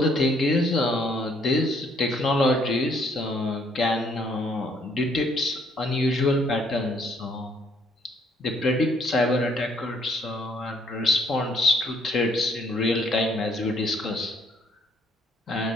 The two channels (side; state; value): both; normal; correlation 0.66